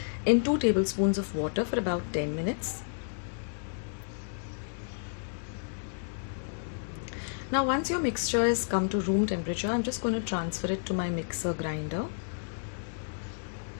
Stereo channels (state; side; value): silent; right; digital silence